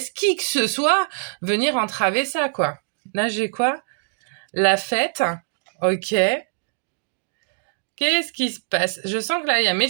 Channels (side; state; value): left; silent; digital silence